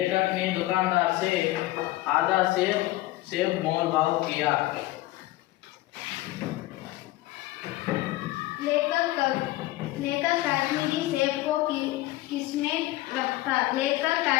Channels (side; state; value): right; quieter; 17.3 dB